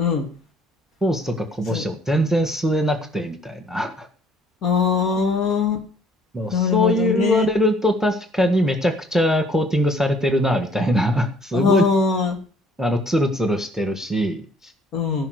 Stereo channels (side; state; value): both; normal; correlation 0.59